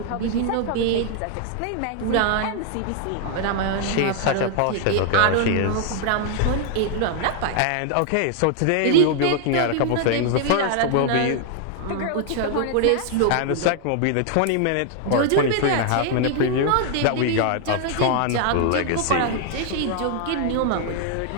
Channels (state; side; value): different; both; correlation 0.00